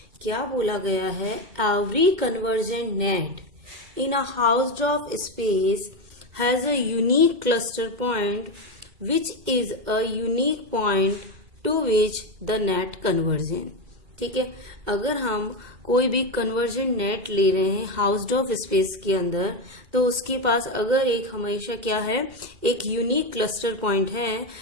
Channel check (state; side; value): late; left; 2.1 ms